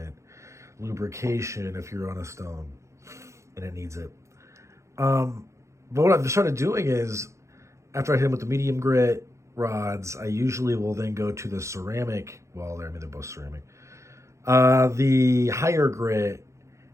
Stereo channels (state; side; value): late; left; 0.14 ms